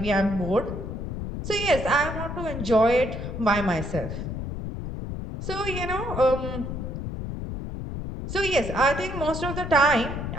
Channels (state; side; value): noise; left; rumble, 6 dB below the sound